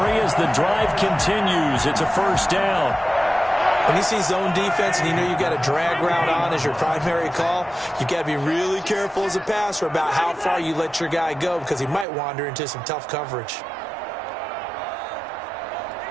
as the drive continues. It's a first down. When you see zone defense and you know you got a drag route on as your primary call, you got to be really careful as a passer about how far you let your guy go because he might wander into some tough coverage.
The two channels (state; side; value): drops out; left; at 12.1 s